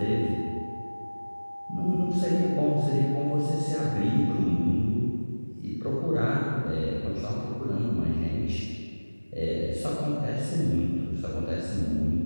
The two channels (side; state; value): both; inverted; correlation -1.00